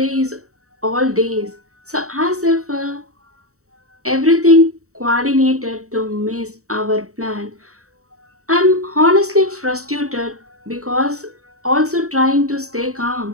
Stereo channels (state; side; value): late; left; 0.64 ms